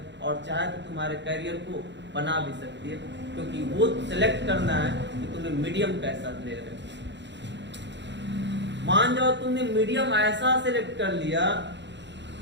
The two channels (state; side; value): late; left; 0.52 ms